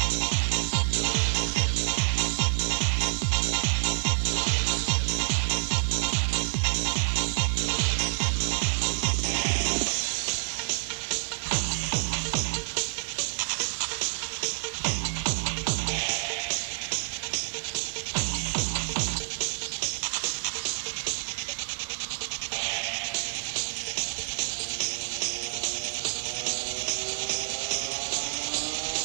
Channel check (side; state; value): left; silent; digital silence